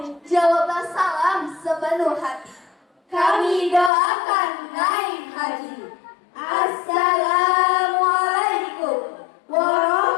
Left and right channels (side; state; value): right; drops out; at 3.9 s